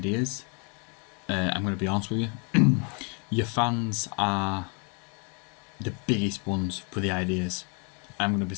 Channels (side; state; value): right; quieter; 35.9 dB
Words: I'm going to be honest with you, your fans are the biggest ones for the ideas. I'm going to be